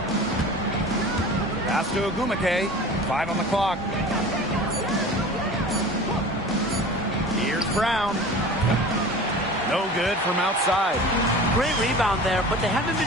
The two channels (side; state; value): both; normal; correlation 0.39